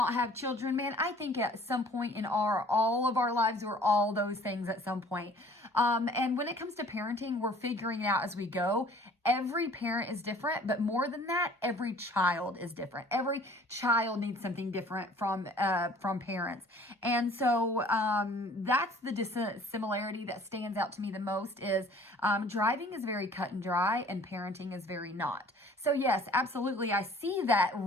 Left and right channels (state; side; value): normal; both; correlation 0.52